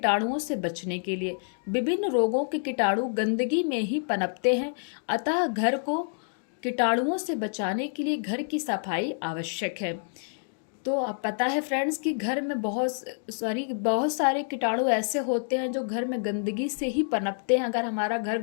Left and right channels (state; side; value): silent; right; digital silence